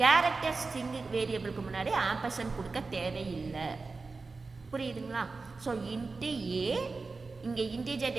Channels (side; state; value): left; quieter; 4.0 dB